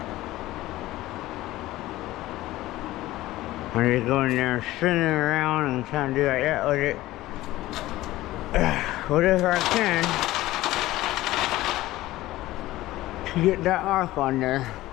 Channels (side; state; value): right; quieter; 16.7 dB